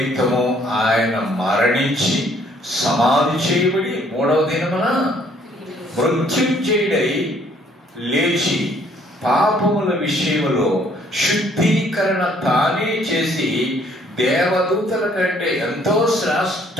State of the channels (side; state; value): both; normal; correlation 0.62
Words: ఆయన మరణించి సమాధి చేయబడి 3వ దినమున మృత్యుంజయుడై లేచి పాపముల విషయములో శుద్ధీకరణ తానే చేసి దేవదూతల కంటే ఎంతో